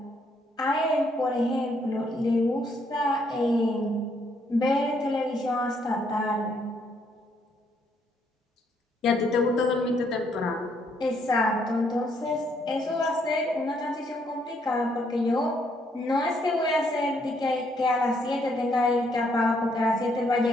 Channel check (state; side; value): normal; both; correlation 0.71